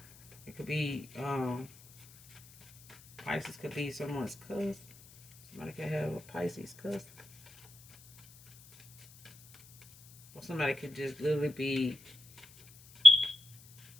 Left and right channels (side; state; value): left; noise; hiss, 24 dB below the sound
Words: It could be, Pisces could be someone's cousin. Somebody could have a Pisces cousin. Or somebody could just literally be